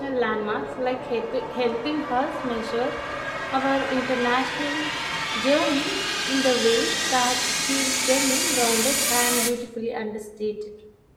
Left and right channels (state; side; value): identical; both; correlation 1.00